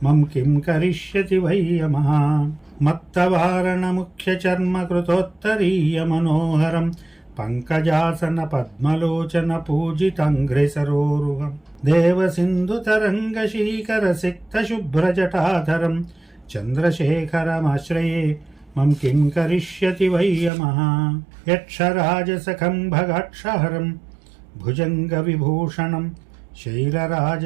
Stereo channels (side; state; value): left; drops out; at 20.5 s